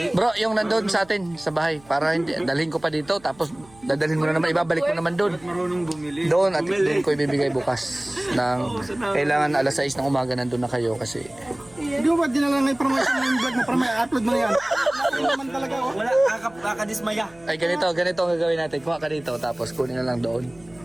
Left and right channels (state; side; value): noise; right; hum, 26 dB below the sound